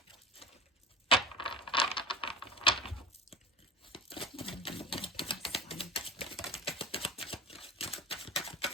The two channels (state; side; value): normal; both; correlation 0.33